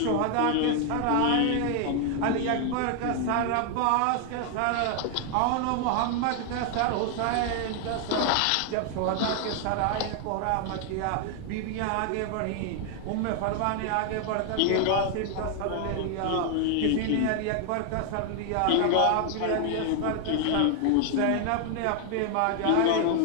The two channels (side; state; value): both; different; correlation 0.00